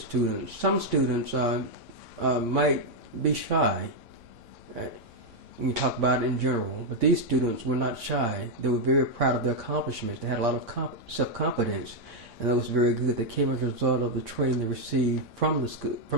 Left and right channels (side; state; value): left; late; 3.5 ms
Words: Some students might be shy. You talk about it in general, but these students were not shy. They were very proud of their accomplishments. They had a lot of self-confidence, and that was very good. They came as a result of the training they received from